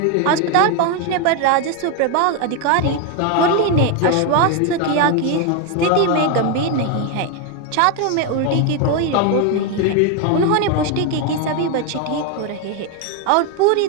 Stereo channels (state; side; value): different; both; correlation 0.02